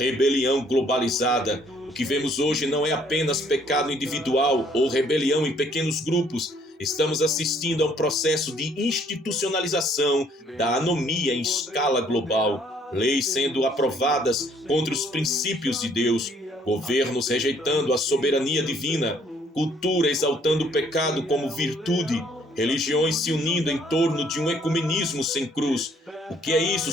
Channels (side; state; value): both; normal; correlation 0.63